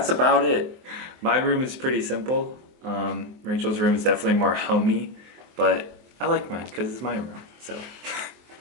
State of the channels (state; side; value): late; left; 23 ms